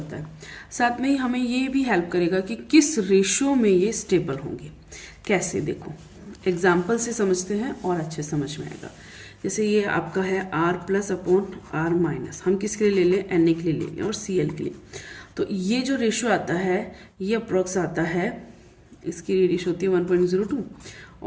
है। साथ में ही हमें ये भी हेल्प करेगा कि किस रेशियो में ये स्टेबल होंगे। कैसे, देखो एग्जाम्पल से समझते हैं और अच्छे समझ में आएगा। जैसे ये आपका है R plus upon R minus, हम किसके लिए ले लें, Na के लिए ले लें और Cl के लिए। तो ये जो रेशियो आता है ये अप्रोक्स आता है, इसकी रेशियो होती है 1.02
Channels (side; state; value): both; identical; correlation 1.00